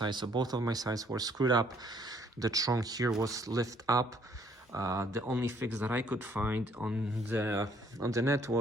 So both of my sides were screwed up. The trunk here was lift up. The only fix that I could find on the net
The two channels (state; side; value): normal; both; correlation 0.64